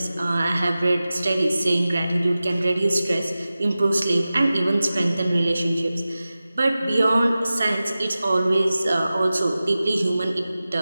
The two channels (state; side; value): inverted; both; correlation -0.95